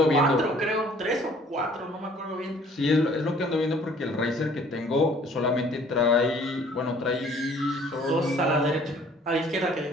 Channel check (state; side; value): normal; both; correlation 0.56